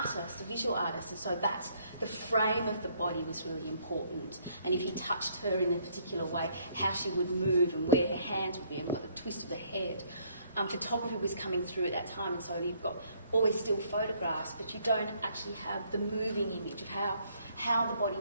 a visual artist, and so that's the frame of the body was really important. And if he touched her in a particular way, how she would move and where her hands would be and what the twist of the head. Photography was coming through at that time, and so you've got always still photographs, but you don't actually have the moving image of how the body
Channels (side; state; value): both; inverted; correlation -0.66